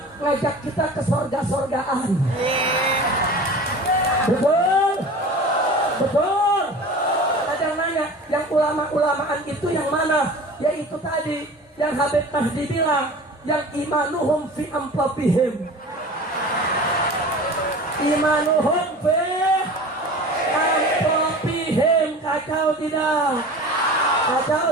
ngajak kita ke surga-surgaan. Betul? Betul? Ada yang nanya, yang ulama-ulamaan itu yang mana? Yaitu tadi yang Habib Mahdi bilang, yang imanuhum fi amplopihim. Imanuhum fi amplopihim. Kacau tidak? Kacau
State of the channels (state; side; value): normal; both; correlation 0.38